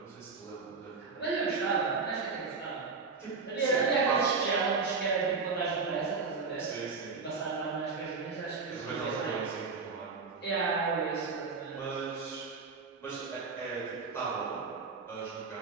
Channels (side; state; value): left; quieter; 4.6 dB